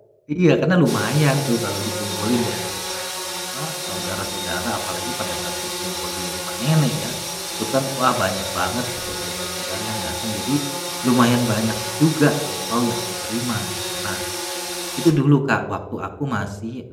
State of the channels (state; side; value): identical; both; correlation 1.00